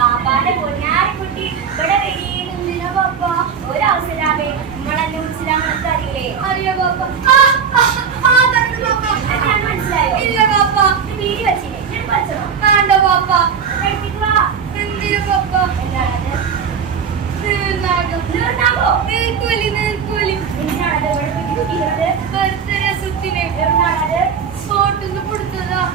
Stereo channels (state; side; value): quieter; left; 6.7 dB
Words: പൊന്നാരിക്കുട്ടി ഇവിടെ വെടിയിലുന്നില്ല ബാപ്പ. ഒരവസരാമേ നിങ്ങളെന്നെ വിളിച്ചില്ലാന്ന് അറിയില്ലേ? അറിയോ ബാപ്പ? മനസ്സിലായോ? ഇല്ല ബാപ്പ. വീടി വെച്ചില്ലേ? ഞാൻ പഠിച്ചോ? വേണ്ട ബാപ്പ. കഴിപ്പിക്കുക. എന്തിനു ബാപ്പ? എന്താണത്? നീർനാഗോ? നീർക്കോലി, നീർക്കോലി. എന്തിനാണത് ഇവിടെ കുട്ടിക്കുന്നത്? ബർത്ത്ഡേ സുറ്റിനെ എവിടുന്നാണത്? ഫോട്ടോന്ന് കൊടുത്തതാ.